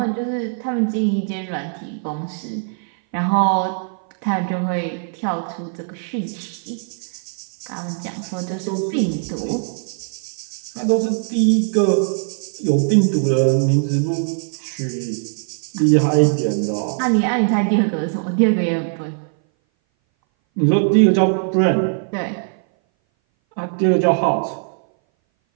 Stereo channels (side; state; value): left; silent; 59 dB below the other